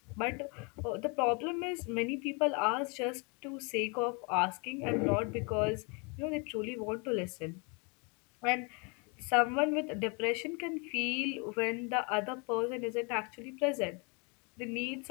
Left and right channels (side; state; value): right; quieter; 32.5 dB